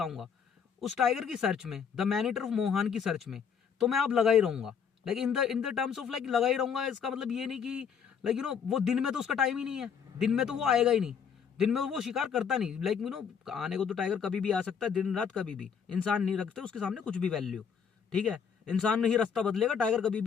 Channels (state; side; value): quieter; right; 7.0 dB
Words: उस टाइगर की सर्च में, the man eater of Mohan की सर्च में तो मैं आप लगा ही रहूंगा, like in the terms of like लगा ही रहूंगा। इसका मतलब ये नहीं कि लाइक यू नो वो दिन में तो उसका टाइम ही नहीं है, दिन में तो वो आएगा ही नहीं, दिन में वो शिकार करता नहीं। लाइक यू नो आने को तो टाइगर कभी भी आ सकता है, दिन रात कभी भी। इंसान नहीं रखते उसके सामने कुछ भी वैल्यू, ठीक है। इंसान नहीं रास्ता बदलेगा, टाइगर कभी